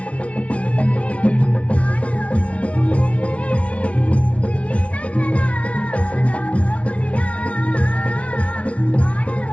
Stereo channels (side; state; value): right; late; 0.063 ms